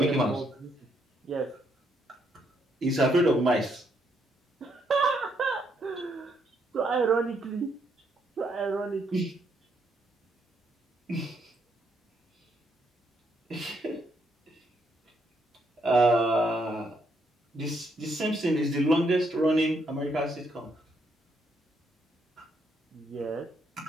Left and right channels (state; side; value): normal; both; correlation 0.75